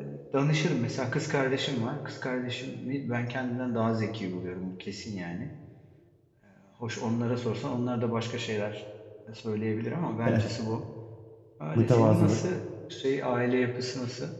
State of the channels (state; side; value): identical; both; correlation 1.00